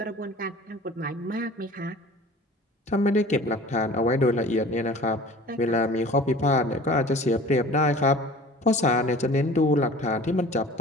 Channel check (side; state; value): both; normal; correlation 0.43